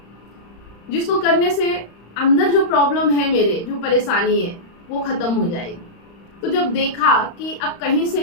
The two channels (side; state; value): right; late; 35 ms